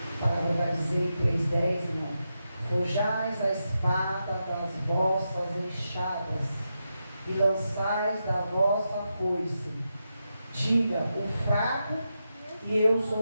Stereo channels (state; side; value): inverted; both; correlation -0.87